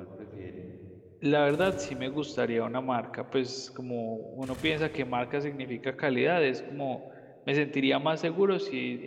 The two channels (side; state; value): both; identical; correlation 1.00